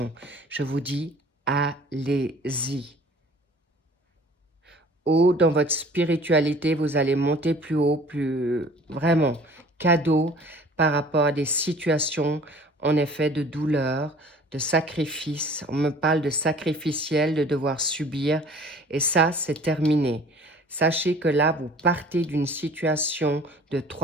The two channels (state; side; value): normal; both; correlation 0.49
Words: Je vous dis, allez-y. Ou dans votre spiritualité, vous allez monter plus haut, plus vraiment cadeau par rapport à des situations, en effet, de douleur, de sacrifice. On me parle de sacrificiel, de devoir subir. Et ça, c'est terminé. Sachez que là, vous partez d'une situation de